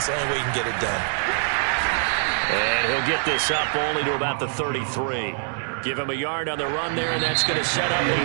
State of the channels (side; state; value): left; silent; 63 dB below the other